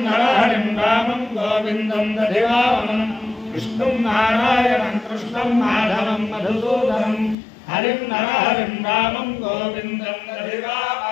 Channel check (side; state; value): right; drops out; at 7.4 s